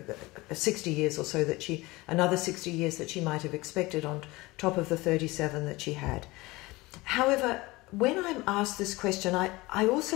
60 years or so another 60 years that she might have expected on top of the 37 that she had. However, when I'm asked this question, I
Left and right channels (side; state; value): right; quieter; 21.5 dB